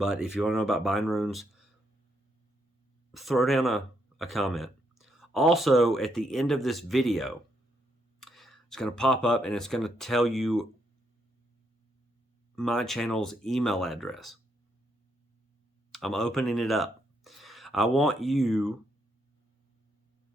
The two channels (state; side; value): normal; both; correlation 0.76